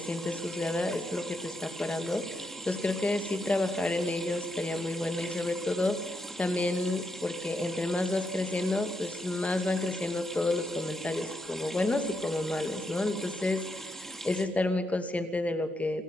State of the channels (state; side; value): normal; both; correlation 0.81